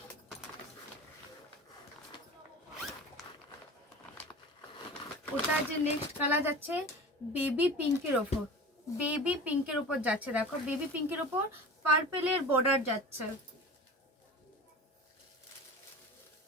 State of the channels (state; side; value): normal; both; correlation 0.35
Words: ওটার যে নেক্সট কালার যাচ্ছে বেবি পিঙ্কের ওপর, বেবি পিঙ্কের ওপর যাচ্ছে। দেখো বেবি পিঙ্কের ওপর পার্পেলের বর্ডার যাচ্ছে,